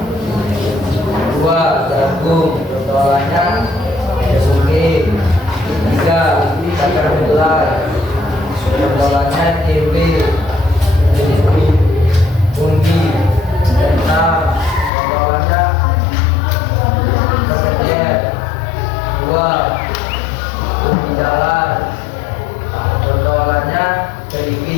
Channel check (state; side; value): drops out; right; at 14.9 s